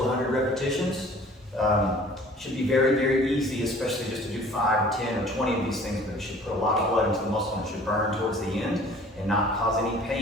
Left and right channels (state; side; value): normal; both; correlation 0.50